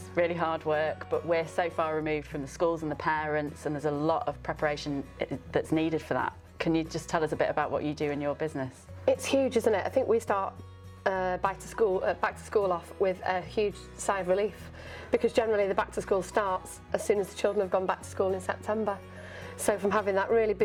really hard work, but we're so far removed from the schools and the parents, and there's a lot of preparation that's needed for that. Can you just tell us a bit about what you do in your business? It's huge, isn't it? I think we start back to school off with a huge sigh of relief, because generally the back to school starts as soon as the children have gone back to school in September. So from having that really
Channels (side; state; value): both; identical; correlation 1.00